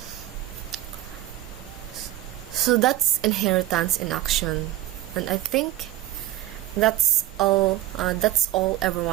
that's inheritance in action, and I think that's all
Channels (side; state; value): left; quieter; 14.3 dB